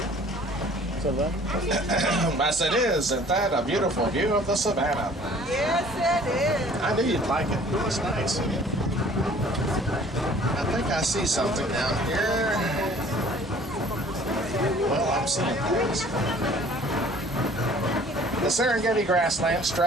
sao vậy? Yes, it is. Isn't that a beautiful view of the savannah? Yes, it is. I knew you'd like it. It's nice. I think I see something down here. Well, I'm seeing things. The Serengeti grasslands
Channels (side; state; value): both; normal; correlation 0.52